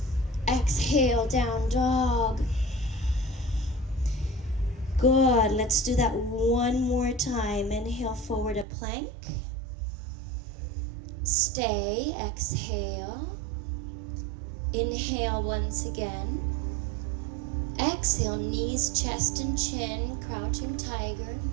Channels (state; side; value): drops out; left; at 8.7 s